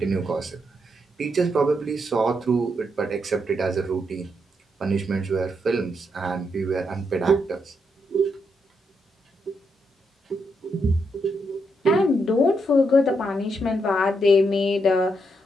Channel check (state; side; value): normal; both; correlation 0.80